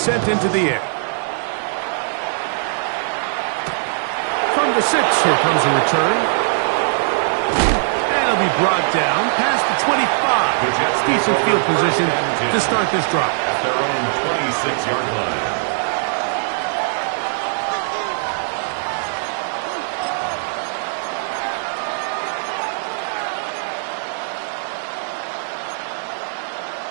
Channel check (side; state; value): left; silent; 62 dB below the other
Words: into the air. From the 6, here comes a return. And it'll be brought down past the 25. Decent field position to start this drive. At their own 26-yard line.